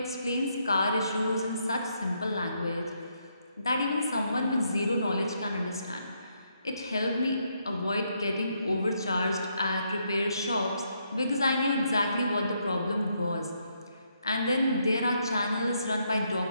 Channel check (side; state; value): both; inverted; correlation -0.76